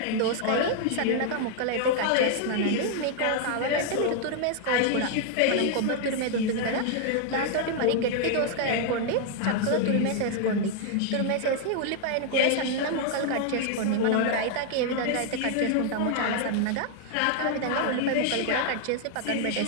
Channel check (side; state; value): both; different; correlation 0.00